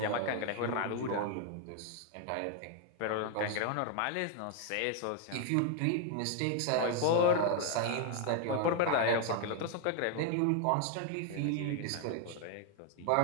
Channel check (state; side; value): different; both; correlation 0.00